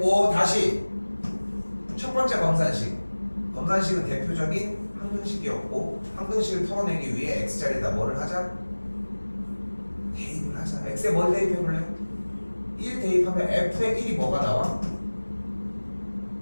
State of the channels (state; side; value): inverted; both; correlation -1.00